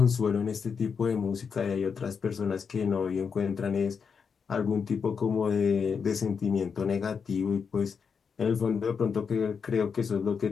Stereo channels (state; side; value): quieter; right; 6.1 dB